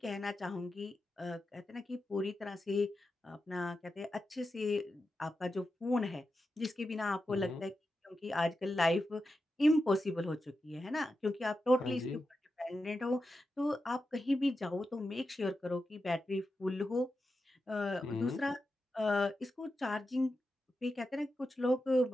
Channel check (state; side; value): normal; both; correlation 0.90